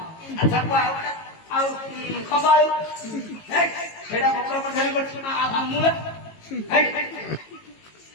ଆଚ୍ଛା କୁହ ଆଉ ଗୋଟେ ଆଉ ଖମ୍ବାଳୁ ହେଇ, ସେଇଟା ବକ୍ର ପରିଧାନ କରିଛି ମୂଳା ହେଇ,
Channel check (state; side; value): late; right; 18 ms